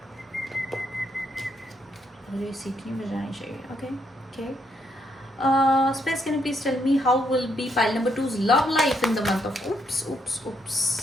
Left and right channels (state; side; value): normal; both; correlation 0.75